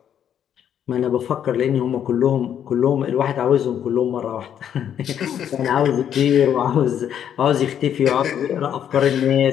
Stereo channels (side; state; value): right; quieter; 9.4 dB